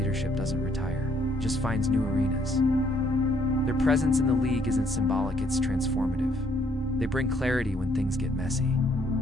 doesn't retire, it just finds new arenas. Their presence in the league isn't symbolic, it's transformative. They bring clarity when things get messy.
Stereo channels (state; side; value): normal; both; correlation 0.67